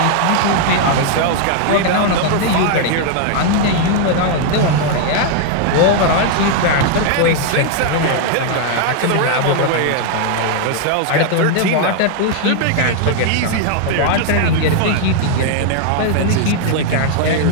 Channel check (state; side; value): different; both; correlation 0.00